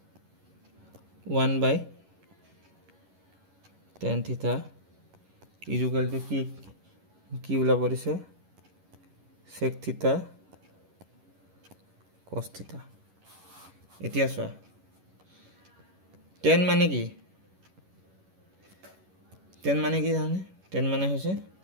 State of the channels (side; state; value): left; late; 11 ms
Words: 1 by tan theta equal to কি ওলাব দিছে sec theta cos theta এতিয়া চোৱা tan মানে কি জানে tan মানে হৈছে